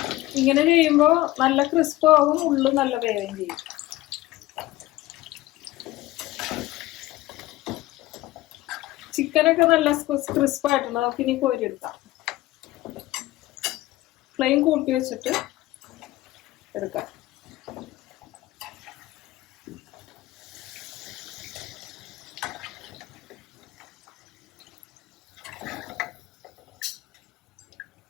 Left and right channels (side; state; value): right; quieter; 17.5 dB